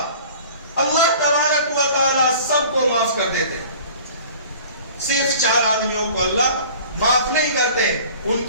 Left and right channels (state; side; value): inverted; both; correlation -0.45